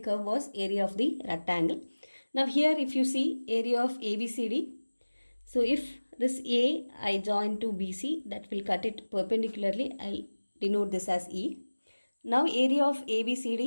was area of the rectangle. Now here if you see area of ABCD, so if this A I join to BC, that will cut it perpendicularly. I'll denote this as E. Now area of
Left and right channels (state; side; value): inverted; both; correlation -1.00